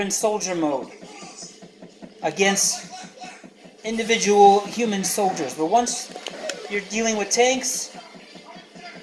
in soldier mode against individual human soldiers. But once you're dealing with tanks,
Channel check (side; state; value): both; identical; correlation 1.00